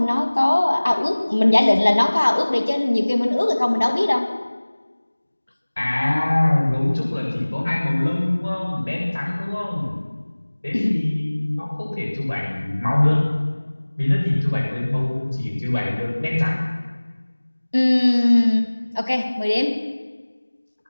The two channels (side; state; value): both; inverted; correlation -1.00